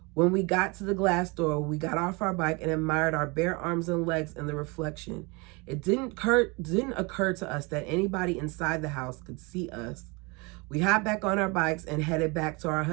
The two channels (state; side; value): quieter; left; 27.9 dB